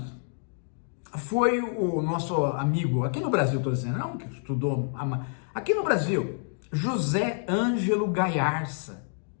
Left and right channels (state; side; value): silent; right; 59 dB below the other